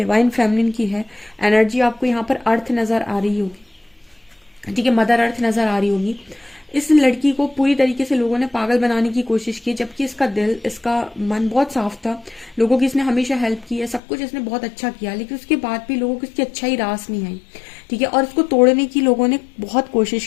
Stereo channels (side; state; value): right; drops out; at 14.0 s